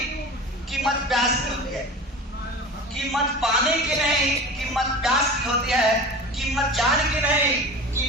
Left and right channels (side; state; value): both; normal; correlation 0.35